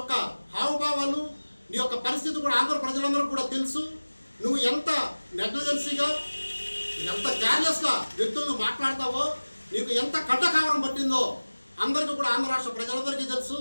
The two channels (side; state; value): both; inverted; correlation -1.00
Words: హావభావాలు, నీ యొక్క పరిస్థితి కూడా ఆంధ్ర ప్రజలందరూ కూడా తెలుసు. నువ్వు ఎంత నెగ్లిజెన్సీగా, ఎంత కేర్లెస్గా వ్యక్తులను మాట్లాడతావో, నీకు ఎంత కట్టకావరం పట్టిందో అందరికీ కూడా ఆంధ్ర రాష్ట్ర ప్రజలందరికీ తెలుసు.